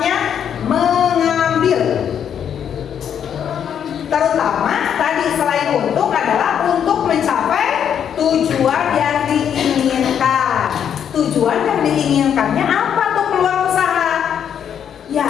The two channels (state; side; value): quieter; right; 8.6 dB